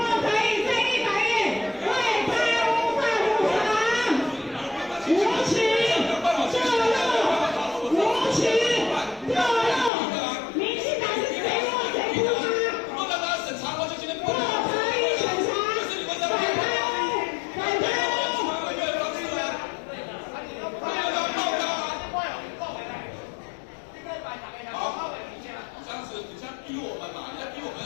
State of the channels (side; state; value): right; drops out; at 9.9 s